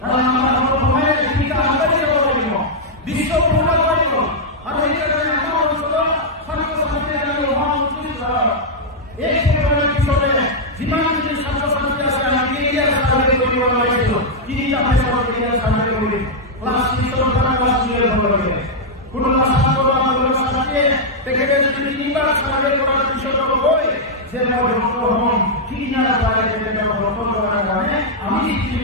কারণ আমরা সময়ে ভূমিকা আমাদের করব বিশ্ব পূর্ণ করব আর এই কারণে আমরা হলো ছাত্র-ছাত্রীদের মহামন্ত্রী এই প্রোগ্রামের পিছনে জীবন যদি ছাত্র-ছাত্রী আছে আমি এরিয়া সার্ভে করি বলা হয়েছিল কি আপনি সব এরিয়া সার্ভে করি ক্লাস 3 ক্লাস 2 এর হবে কোনো ছাত্র আমাদের সাথে দেখে যদি তিনবার সার্ভে করার বিষয় হয় যে হম কি না পারে এটা প্রপোজ করার কারণে আমি কি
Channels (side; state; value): both; normal; correlation -0.05